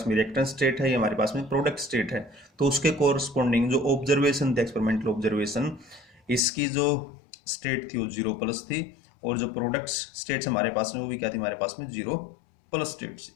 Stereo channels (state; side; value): drops out; right; at 6.4 s